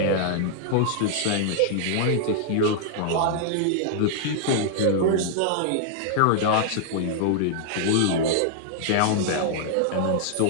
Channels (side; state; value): both; different; correlation -0.01